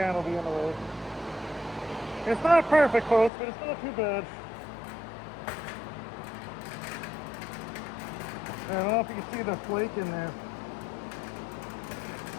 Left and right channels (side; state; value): right; drops out; at 3.3 s